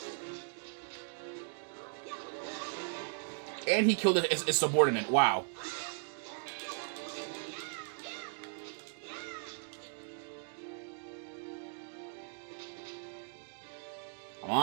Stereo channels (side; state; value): left; silent; digital silence